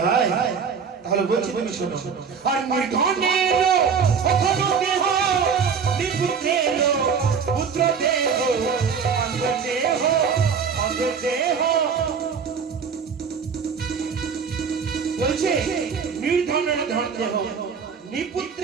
হয় তাহলে বলছি তুমি শোনো আর নির্ধনের ওখানে দেহ নিপুত্রের পুত্র দেহ অঙ্গ দেহ বলছে নির্ধনের ধন দেহ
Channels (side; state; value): left; quieter; 6.3 dB